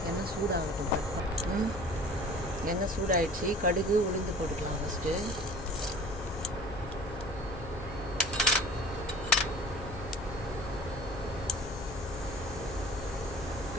சூடாகட்டும். எண்ணெய் சூடாயிடுச்சு. கடுகு, உளுந்து போட்டுக்கலாம். ஃபஸ்ட்டு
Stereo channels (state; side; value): noise; left; hum, 11 dB below the sound